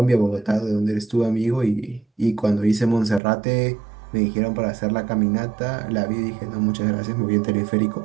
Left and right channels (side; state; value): left; drops out; at 3.2 s